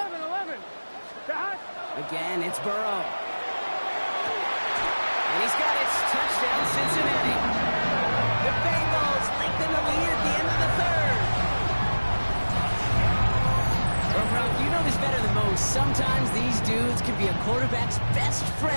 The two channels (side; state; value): both; inverted; correlation -1.00